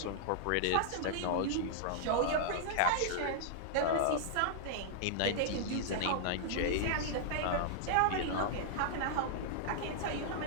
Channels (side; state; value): both; different; correlation -0.01